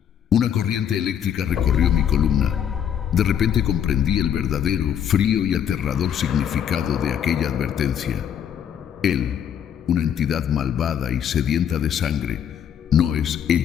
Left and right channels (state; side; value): quieter; right; 9.1 dB